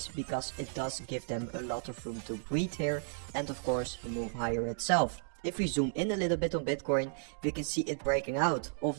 because it does give them a lot of room to breathe here and of course move higher itself. If we zoom in a little bit on Bitcoin, we can see it breaking out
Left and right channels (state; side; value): silent; left; digital silence